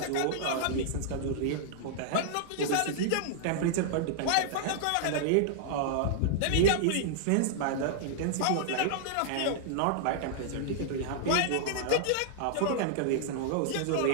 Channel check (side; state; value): both; different; correlation -0.01